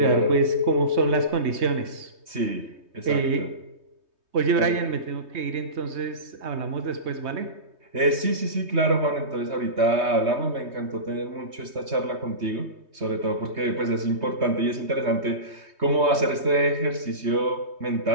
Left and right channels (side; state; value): left; late; 3.2 ms